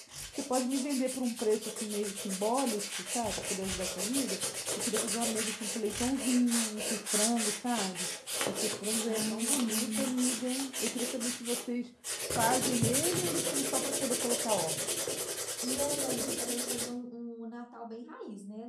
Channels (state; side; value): identical; both; correlation 1.00